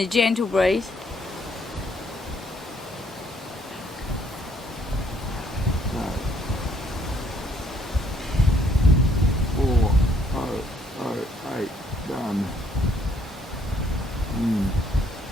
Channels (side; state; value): both; normal; correlation 0.67